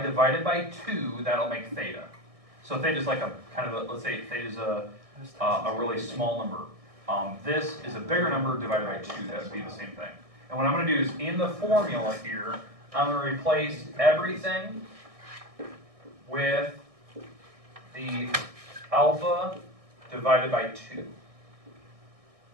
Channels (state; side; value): late; left; 1.6 ms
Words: divide it by 2, that'll make theta. So theta is like a kind of a, let's say theta is a really small number. This is a bigger number divided by 2. That would be the same thing. And what I'm going to do is in the formula here, I'm going to replace everything with the alpha divided by 2.